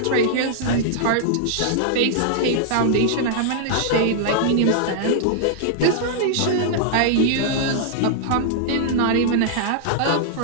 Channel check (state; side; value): different; both; correlation -0.01